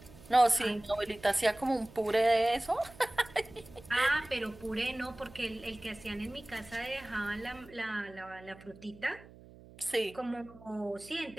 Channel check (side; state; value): right; noise; hum, 21 dB below the sound